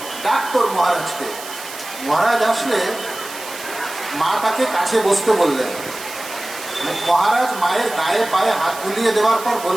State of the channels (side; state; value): right; noise; hiss, 13 dB below the sound